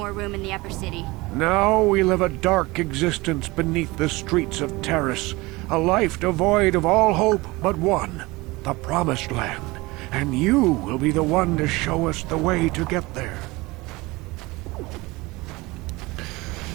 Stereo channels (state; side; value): quieter; left; 22.3 dB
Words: room in the upper city. Now we live a dark existence beneath the streets of Terrace, a life devoid of all hope but one, the Promised Land. And you will be the one to show us the way to get there.